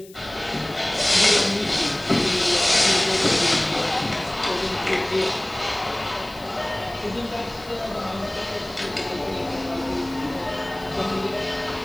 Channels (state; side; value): noise; left; hiss, 23 dB below the sound